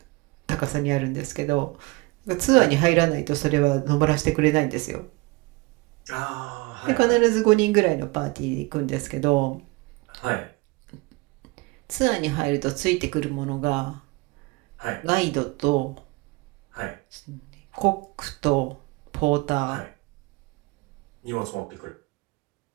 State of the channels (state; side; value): quieter; left; 24.4 dB